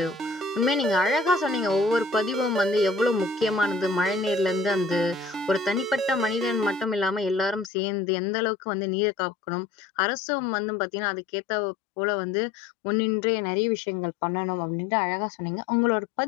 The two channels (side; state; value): right; drops out; at 7.7 s